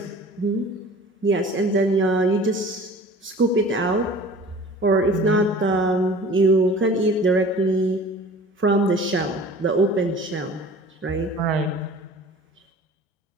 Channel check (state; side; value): normal; both; correlation 0.44